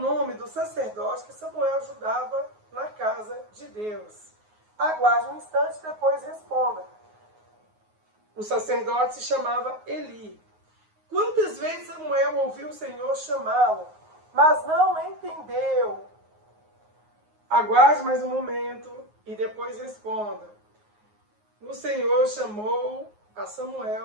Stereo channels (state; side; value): late; left; 9.5 ms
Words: nome do sacerdote que Samuel ajudava na casa de Deus? Aguarde um instante e depois responda. O sacerdote se chamava Eli. Quantas vezes Samuel ouviu o Senhor chamá-lo, mas não entendeu? Aguarde mais um momento e depois responda. O Senhor chamou a